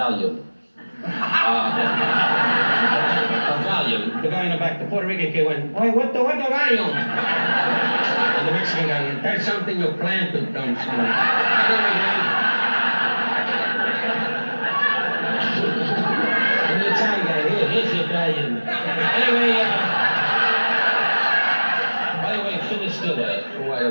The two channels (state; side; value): inverted; both; correlation -1.00